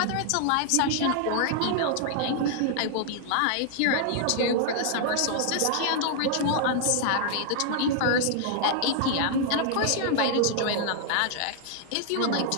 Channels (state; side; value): different; both; correlation -0.01